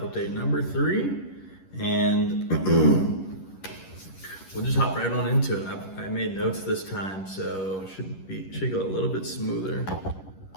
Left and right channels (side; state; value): right; late; 11 ms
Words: update number 3, and we'll just hop right on into it. I made notes this time, so should go a little bit smoother.